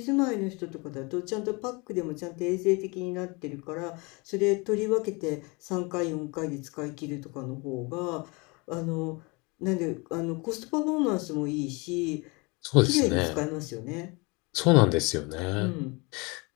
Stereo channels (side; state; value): right; quieter; 28.0 dB